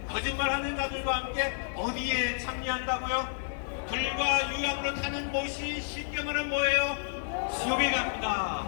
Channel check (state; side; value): silent; right; digital silence